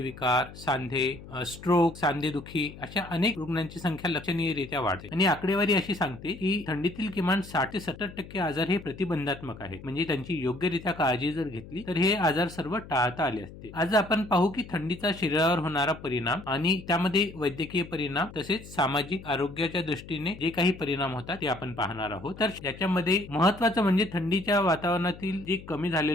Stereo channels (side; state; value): left; noise; hum, 16 dB below the sound